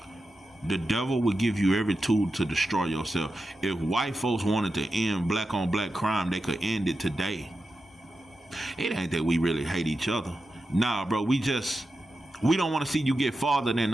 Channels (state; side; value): normal; both; correlation 0.91